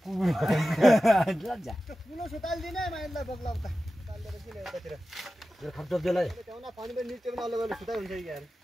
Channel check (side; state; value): both; normal; correlation 0.94